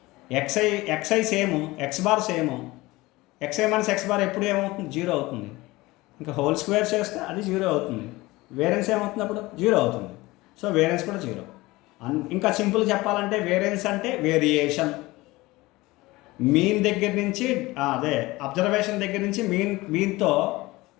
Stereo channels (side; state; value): right; quieter; 20.4 dB